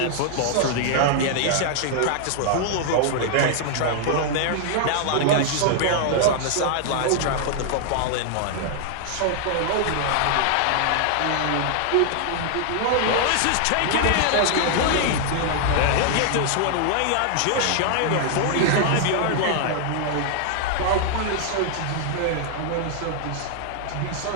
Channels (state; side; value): different; both; correlation 0.00